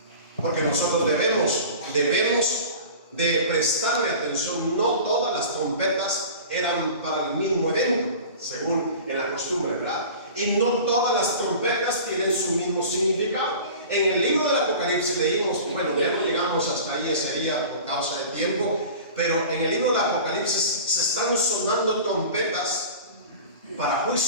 Porque nosotros debemos de prestarle atención. No todas las trompetas eran para el mismo evento, según en la costumbre, ¿verdad? Y no todas las trompetas tienen su mismo significado. En el libro del Apocalipsis leímos, bueno, ya no llegamos hasta ahí ese día por causa de tiempo, pero en el libro del Apocalipsis se están sonando trompetas para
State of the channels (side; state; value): both; inverted; correlation -0.39